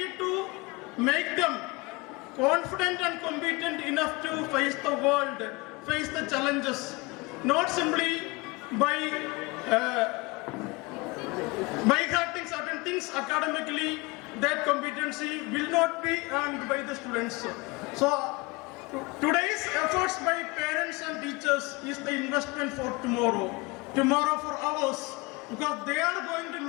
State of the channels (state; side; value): quieter; right; 24.6 dB